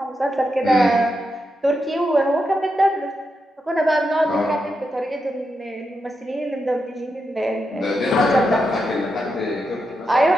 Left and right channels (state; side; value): normal; both; correlation 0.85